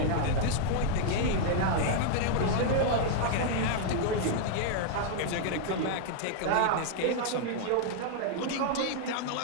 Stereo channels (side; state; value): both; different; correlation 0.00